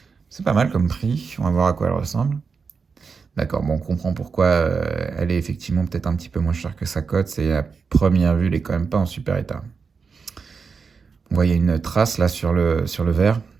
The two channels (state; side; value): quieter; left; 5.3 dB